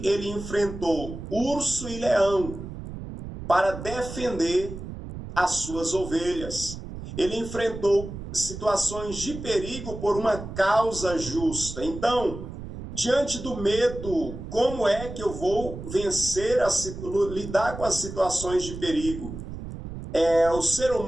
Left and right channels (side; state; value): right; noise; rumble, 10 dB below the sound